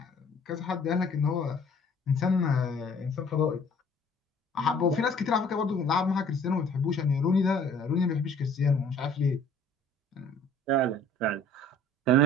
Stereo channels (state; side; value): normal; both; correlation 0.54